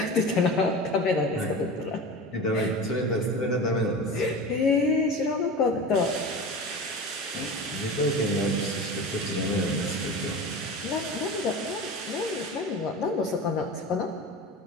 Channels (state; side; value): normal; both; correlation 0.31